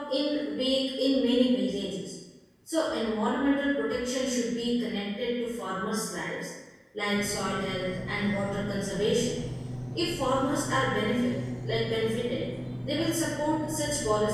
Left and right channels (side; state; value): both; identical; correlation 1.00